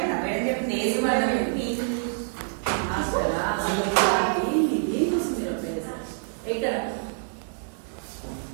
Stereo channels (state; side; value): silent; left; digital silence